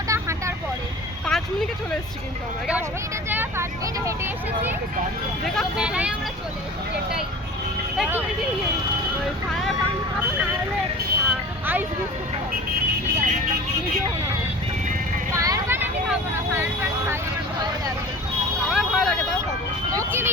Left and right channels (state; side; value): normal; both; correlation 0.39